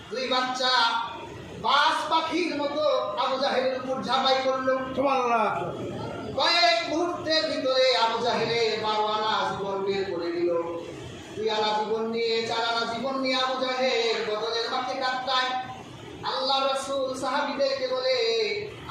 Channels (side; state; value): both; identical; correlation 1.00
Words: দুই বাচ্চা বাস পাখির মতো আবু জাহেলের উপর ঝাঁপাই করলো। কয়েক মুহূর্তের ভিতরে আবু জাহেলের 12 আনা জীবন বের করে দিল। 2 আনা জীবন নিয়ে 4 আনা জীবন নিয়ে আবু জাহেল বদরের মাঠে কাটায়। আল্লাহ রাসূল সাহাবীদেরকে বলে,